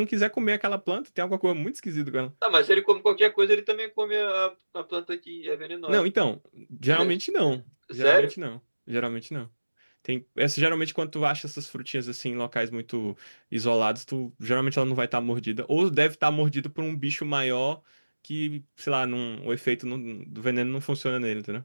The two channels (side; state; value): both; inverted; correlation -1.00